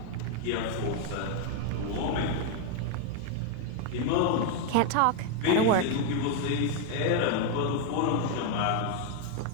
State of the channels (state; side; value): different; both; correlation 0.01